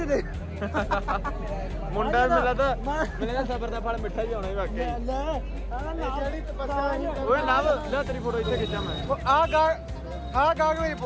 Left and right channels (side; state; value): both; identical; correlation 1.00